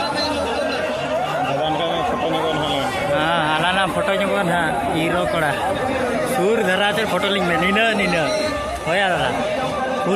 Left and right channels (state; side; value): identical; both; correlation 1.00